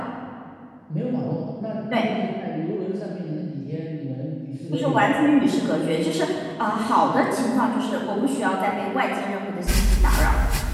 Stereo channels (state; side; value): identical; both; correlation 1.00